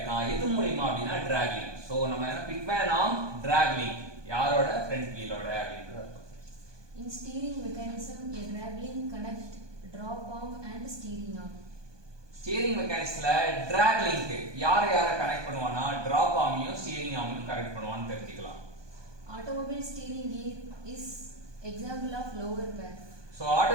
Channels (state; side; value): late; left; 1.2 ms